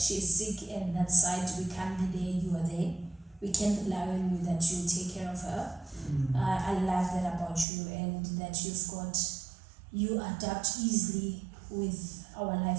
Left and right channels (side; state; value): left; drops out; at 7.7 s